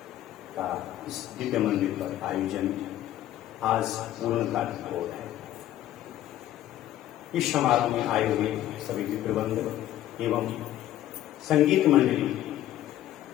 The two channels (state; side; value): quieter; right; 13.1 dB